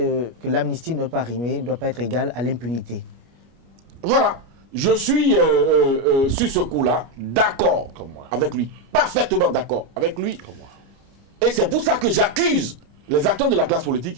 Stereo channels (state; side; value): late; left; 25 ms